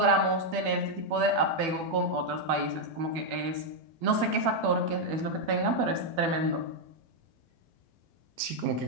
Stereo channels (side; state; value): left; late; 12 ms